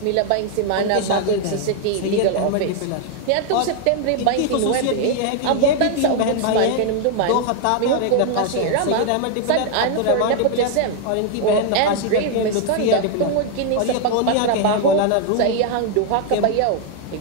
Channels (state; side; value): different; both; correlation 0.00